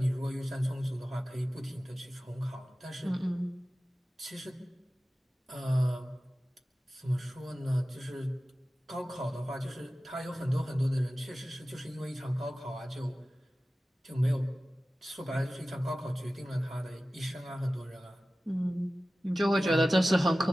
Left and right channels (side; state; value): both; normal; correlation 0.96